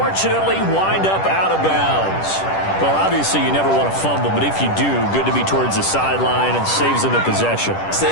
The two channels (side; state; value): right; late; 10 ms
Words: wind up out of bounds. Well, obviously you never want to fumble, but if you do, good to be towards the sideline and saves them the possession.